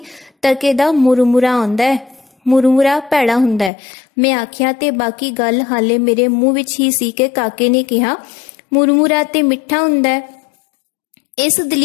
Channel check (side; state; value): right; drops out; at 3.7 s